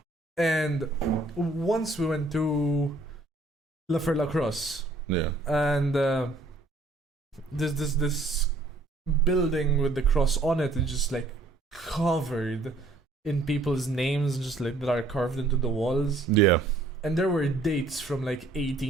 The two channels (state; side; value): quieter; left; 3.1 dB